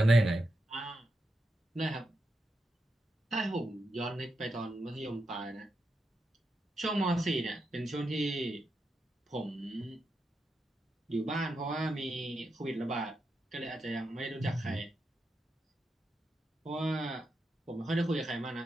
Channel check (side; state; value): both; normal; correlation 0.86